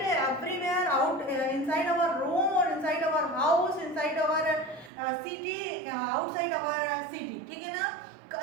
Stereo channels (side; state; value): left; drops out; at 4.9 s